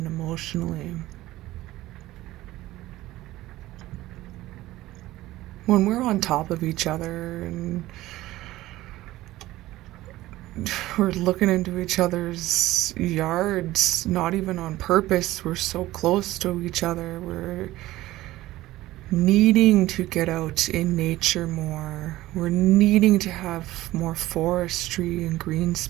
emotionally. When we're on top of each other and we're looking into each other's yards, not even on purpose, we're so close to each other, we're needing to get out in nature more. We're needing to have more forestry and green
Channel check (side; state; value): left; quieter; 16.6 dB